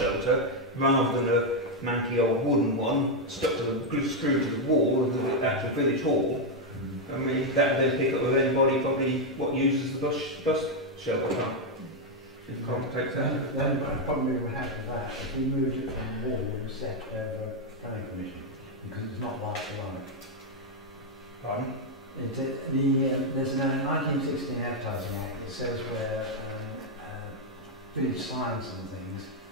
rather than a manky old wooden one stuck to the screw to the wall of the actual village hall. I mean, that would then pick up with anybody probably what uses the bus shelter park. If Colin takes that. The only problem we would have with that, if we moved it from the wall, we would set over planning permission, because it's not like the one. Pardon? There's a 1916 Advertising Act that says where village signs and things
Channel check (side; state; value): both; normal; correlation 0.01